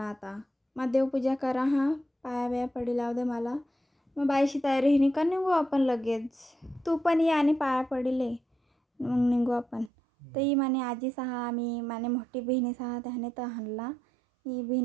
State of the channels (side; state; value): left; drops out; at 9.9 s